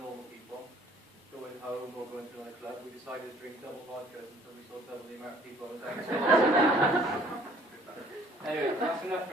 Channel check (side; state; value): both; normal; correlation 0.57